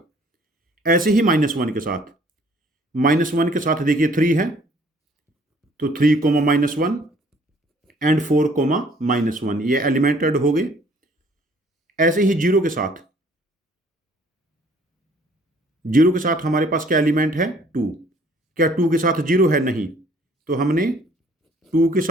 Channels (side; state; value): both; normal; correlation 0.58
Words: ऐसे ही -1 के साथ, -1 के साथ देखिए 3 है, तो 3 कोमा -1 एंड 4 कोमा -1, ये एलिमेंट ऐड हो गए। ऐसे ही 0 के साथ, 0 के साथ हमारे पास क्या एलिमेंट है? 2। क्या 2 के साथ 0 है? नहीं, तो हमने 2 के